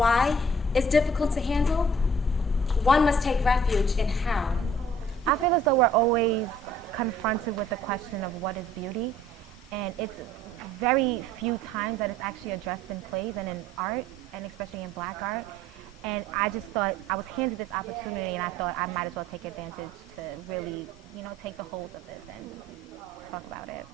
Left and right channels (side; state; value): both; normal; correlation 0.56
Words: is difficult to handle, one must take refuge in how. I feel as though we're always confronted with the question of what is beauty, and it's very few times that it's actually addressed in plays and in art, and especially in black art. And I just thought I was handed this opportunity, and I thought I might as well take advantage to really, take the hold of this and talk about it.